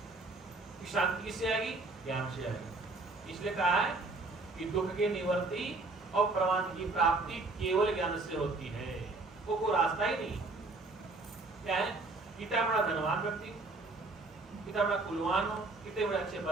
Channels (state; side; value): quieter; left; 3.4 dB